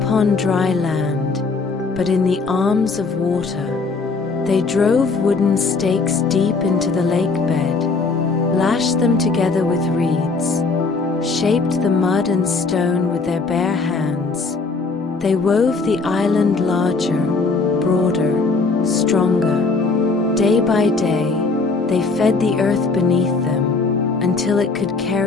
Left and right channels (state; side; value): quieter; right; 4.1 dB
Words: dry land, but in the arms of water. They drove wooden stakes deep into the lake bed, lashed them together with reeds, shaped the mud and stone with their bare hands. They wove the island larger, broader, stronger. Day by day, they fed the earth beneath them until it could